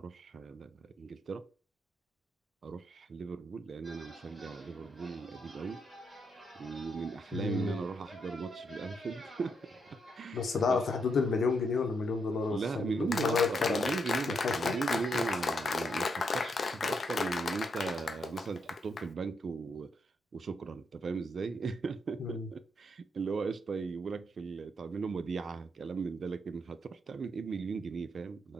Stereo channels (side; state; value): both; normal; correlation 0.78